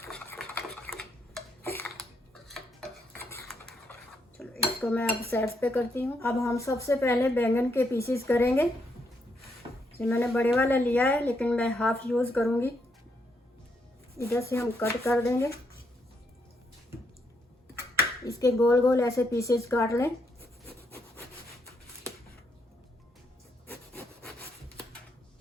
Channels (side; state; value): both; normal; correlation 0.77